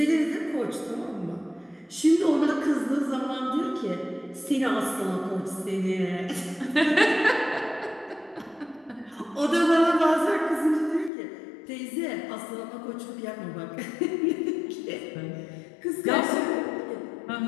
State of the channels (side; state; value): right; drops out; at 11.1 s